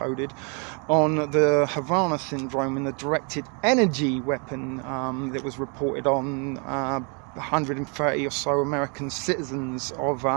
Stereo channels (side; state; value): left; quieter; 36.2 dB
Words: on the Havana syndrome and the directed energy weapon that was reported on 130 or so American citizens of